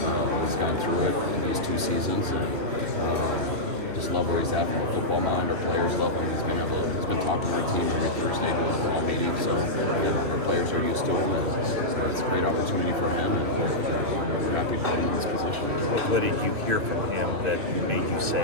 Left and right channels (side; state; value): left; late; 2.9 ms